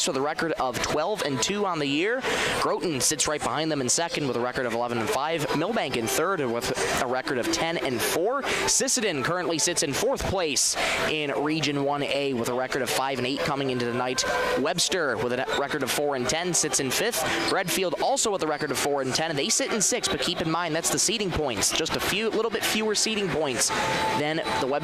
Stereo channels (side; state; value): both; identical; correlation 1.00